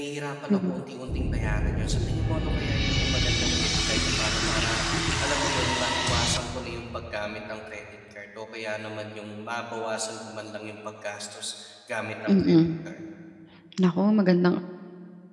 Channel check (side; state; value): both; identical; correlation 1.00